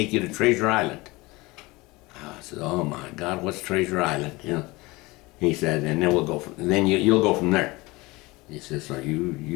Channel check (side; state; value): right; quieter; 22.5 dB